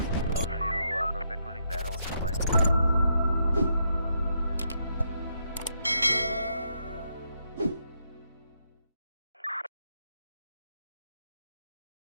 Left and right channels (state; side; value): inverted; both; correlation -0.79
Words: Roger, you perfect ruling barrel for line 1.